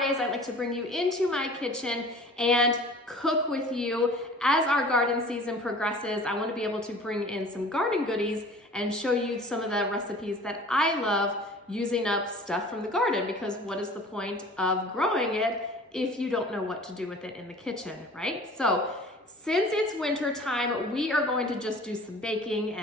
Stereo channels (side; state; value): both; normal; correlation 0.45